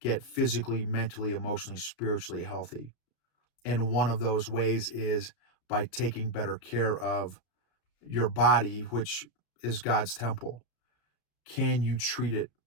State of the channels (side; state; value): right; late; 33 ms